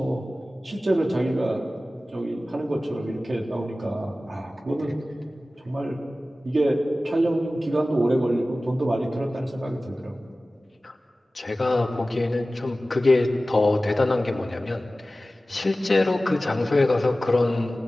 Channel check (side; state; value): both; normal; correlation 0.96